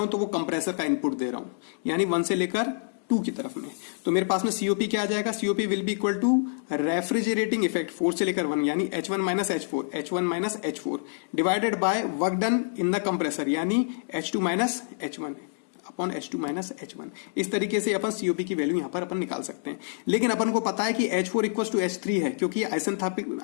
हूं तो वो कंप्रेसर का इनपुट दे रहा हूं, यानी 1 से लेकर 2 की तरफ में। तो मेरे पास में सीओपी क्या आ जाएगा, COP will be equal to refrigerating effect 4 से लेकर 1, यानी H1 minus H4 divided by work done in the compressor, यानी H2 minus H1 upon H2 minus H1। इस तरीके से अपन सीओपी की वैल्यू यहां पर अपन निकाल सकते हैं। लेकिन अपन को पता है कि H4 इक्वल टू H3 है, क्योंकि ये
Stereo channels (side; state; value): right; silent; digital silence